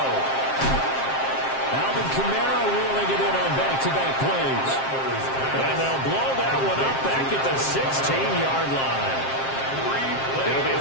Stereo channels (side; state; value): right; late; 7.5 ms